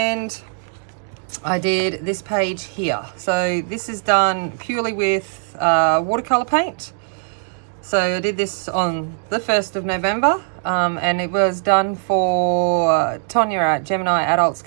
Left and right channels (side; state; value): left; silent; digital silence